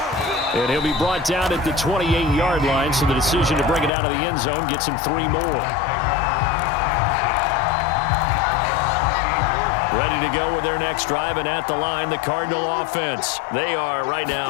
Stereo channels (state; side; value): drops out; right; at 3.9 s